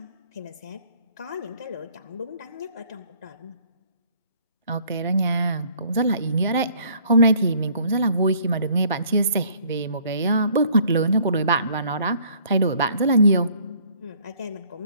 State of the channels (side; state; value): both; inverted; correlation -0.59